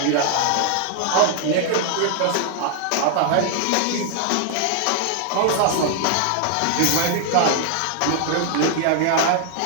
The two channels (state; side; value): different; both; correlation 0.00